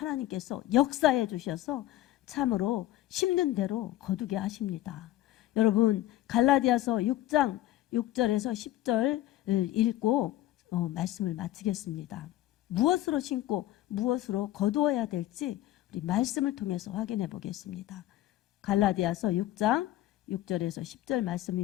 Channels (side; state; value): right; quieter; 14.6 dB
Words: 역사해 주셔서 참으로 심는 대로 거두게 하십니다. 여러분, 갈라디아서 6장 6절에서 10절 읽고 말씀을 마치겠습니다. 무엇으로 심고 무엇으로 거두어야 될지 우리 말씀을 통해서 확인해 보겠습니다. 갈라디아서 6장 6절에서 10절